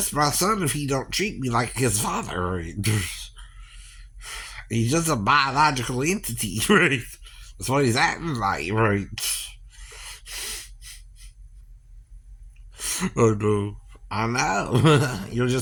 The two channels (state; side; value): identical; both; correlation 1.00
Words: my son if he don't treat me like his father. Right? He's just a biological entity. Right? That's what he's acting like. Right? Oh no. I know. You'll